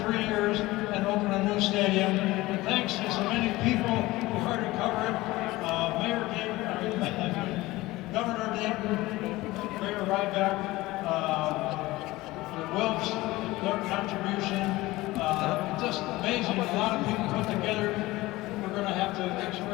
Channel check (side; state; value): right; quieter; 19.1 dB